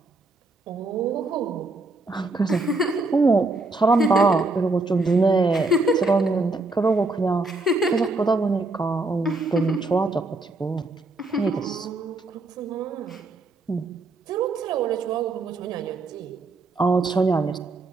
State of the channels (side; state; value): left; quieter; 3.1 dB